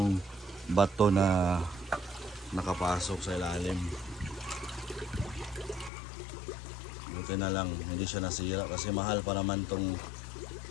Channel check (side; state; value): right; drops out; at 5.9 s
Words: bato na nakapasok sa ilalim. Buti na lang hindi siya nasira kasi mahal pa naman tong